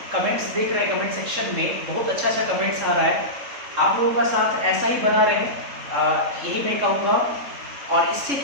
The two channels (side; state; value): left; late; 3.7 ms